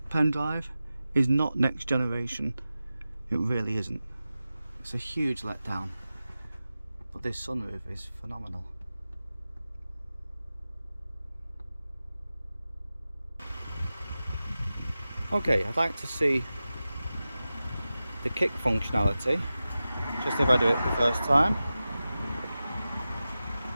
pen drive is not next generation. It really isn't. It's a huge letdown. But this sunroof is phenomenal. Okay, I'd like to see the kick functionality, just if I do it the first time.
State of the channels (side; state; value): both; inverted; correlation -0.95